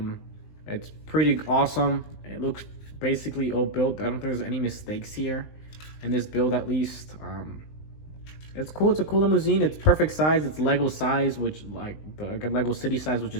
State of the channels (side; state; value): right; late; 19 ms